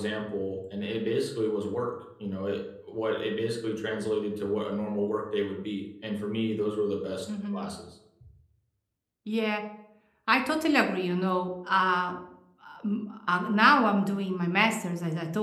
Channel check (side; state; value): both; identical; correlation 1.00